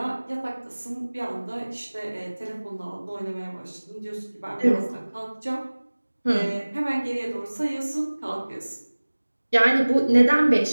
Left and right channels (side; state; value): both; inverted; correlation -1.00